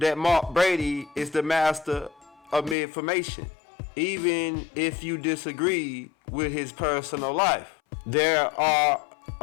Mark Brady is the master of misinformation, even if you disagree with his personal life. There are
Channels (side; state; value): right; drops out; at 2.8 s